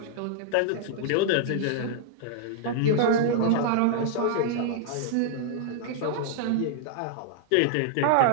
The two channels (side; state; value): both; different; correlation -0.01